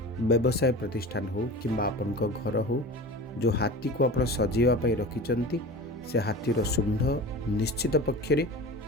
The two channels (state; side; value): normal; both; correlation 0.34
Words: व्यवसाय प्रतिष्ठान हो किंबा आपण घर हो जो हाथी को आपण सजेवा पई रखिचंती से हाथीर शुंढ निश्चित पक्षरे